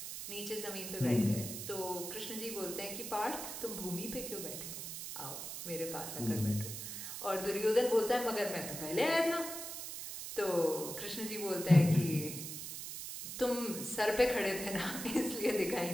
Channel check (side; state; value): right; noise; hiss, 7 dB below the sound